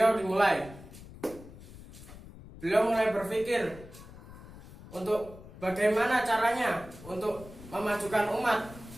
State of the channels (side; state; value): left; noise; rumble, 17 dB below the sound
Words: dimulai. Beliau mulai berpikir untuk bagaimana caranya untuk memajukan umat